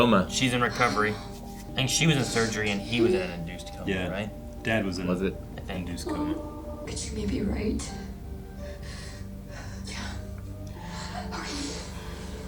She's in recovery. I think she was in surgery and he was in an induced coma, Yeah. right? Dad was in Was it? I think. induced coma. Could you maybe write?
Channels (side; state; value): both; identical; correlation 1.00